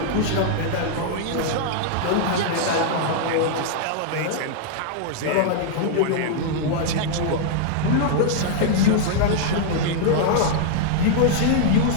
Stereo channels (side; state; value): both; different; correlation -0.01